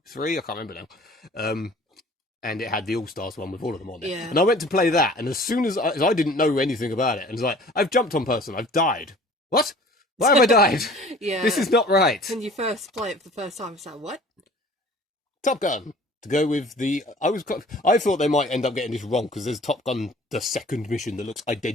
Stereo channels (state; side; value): normal; both; correlation 0.48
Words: 3. I can't remember now. And it had the All Stars one with all of them on it. Yeah. And I went to play that, and as soon as I didn't know anything about it, and it's like, I've jumped on person, I've died. What? Why have I died? Yeah. This is not right. When you first play it for the first time, it's like, what? Top Gun. To go with the... I thought they might end up getting this wrong, because there's Top Gun, the second mission, that looks